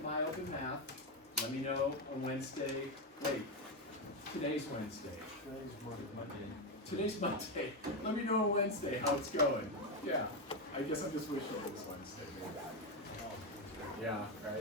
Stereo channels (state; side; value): normal; both; correlation 0.08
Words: Open Math. Let me know on Wednesday. Wait, Today's Wednesday. Today's Monday. Today's Monday. Let me know on Wednesday how it's going. Yeah. I guess I'm just wishing it was Wednesday. Maybe. Yeah,